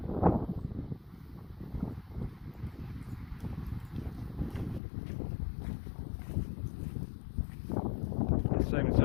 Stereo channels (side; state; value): right; drops out; at 4.8 s